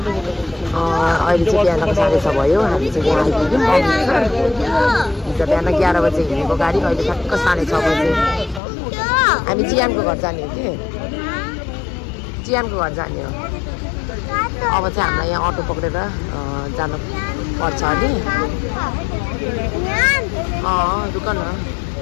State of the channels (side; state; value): right; drops out; at 8.6 s